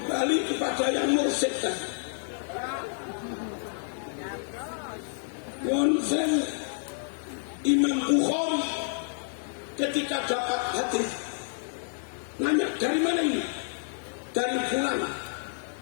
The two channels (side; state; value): right; silent; 59 dB below the other